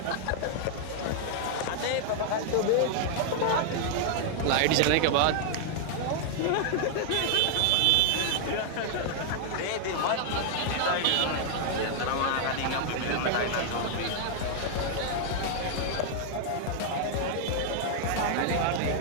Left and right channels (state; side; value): different; both; correlation -0.01